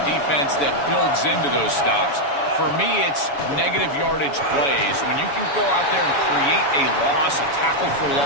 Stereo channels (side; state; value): right; late; 7.1 ms